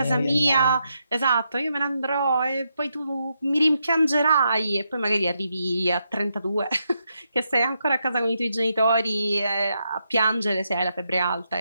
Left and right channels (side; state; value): both; inverted; correlation -0.82